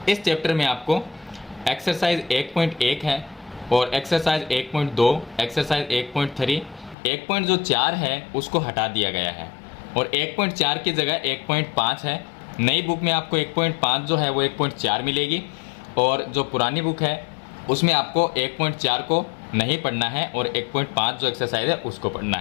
इस चैप्टर में आपको एक्सरसाइज 1.1 है और एक्सरसाइज 1.2, एक्सरसाइज 1.3, 1.4 है उसको हटा दिया गया है और 1.4 की जगह 1.5 है। नई बुक में आपको 1.5 जो है वो 1.4 मिलेगी और जो पुरानी बुक है उसमें आपको 1.4 को नहीं पढ़ना है और 1.5 जो एक्सरसाइज है उसको पढ़ना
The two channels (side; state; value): right; drops out; at 7.0 s